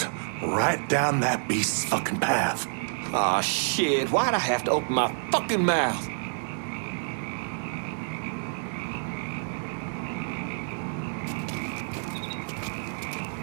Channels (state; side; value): silent; left; 59 dB below the other